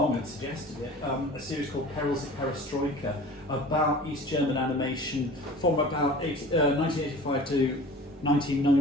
and suggested it, a series called Perils of Perestroika, about East German animation from about 1985 to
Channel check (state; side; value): normal; both; correlation 0.41